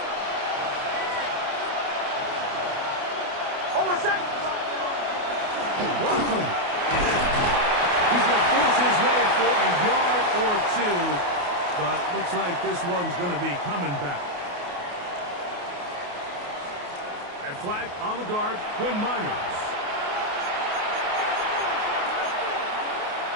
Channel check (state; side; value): late; left; 28 ms